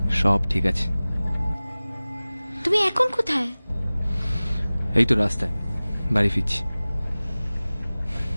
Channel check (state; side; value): inverted; both; correlation -0.99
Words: সব ঠিক আছে। তুমি এখন কোথায়? এই তো রাস্তায়, বাড়ি ফিরছি।